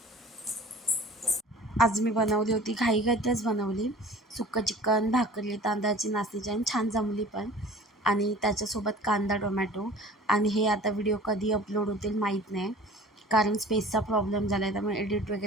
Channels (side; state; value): both; normal; correlation 0.44